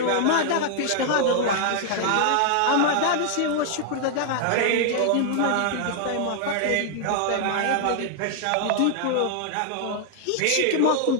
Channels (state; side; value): different; both; correlation 0.00